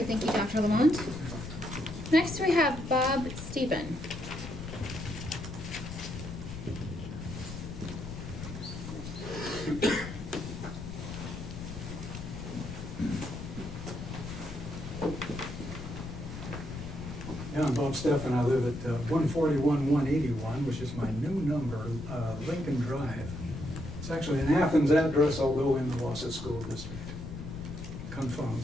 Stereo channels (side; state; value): left; noise; rumble, 9 dB below the sound